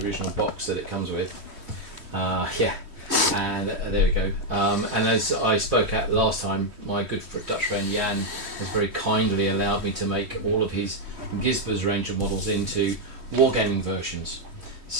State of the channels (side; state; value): left; late; 3.1 ms